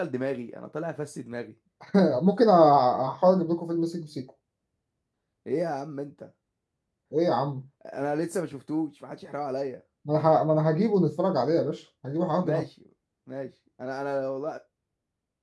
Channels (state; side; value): identical; both; correlation 1.00